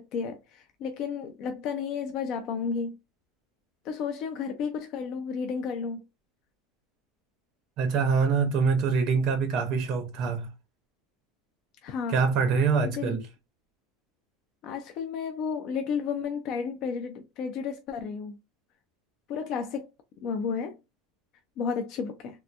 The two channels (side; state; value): both; normal; correlation 0.42